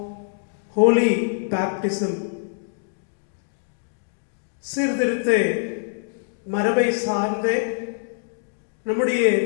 ஹோலி பேப்டிசம். சீர்திருத்த மரபை சார்ந்த நம்முடைய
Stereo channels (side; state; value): right; silent; digital silence